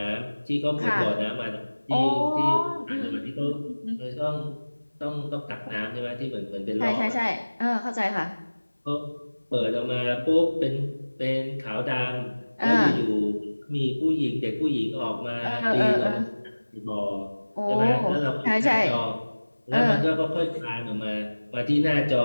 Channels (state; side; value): inverted; both; correlation -1.00